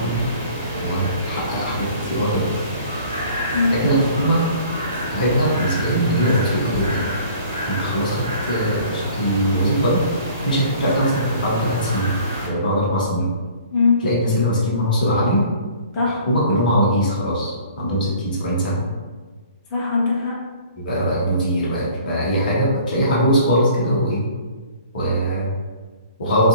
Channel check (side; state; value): both; inverted; correlation -0.50